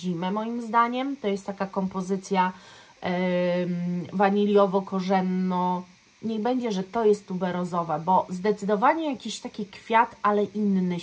moim zdaniem. To jest taka kompozycja waniliowo-korzenno. Niech będzie, że to jest tuberozowa, bo zdecydowanie jakiś taki kwiat, ale inny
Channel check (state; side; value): identical; both; correlation 1.00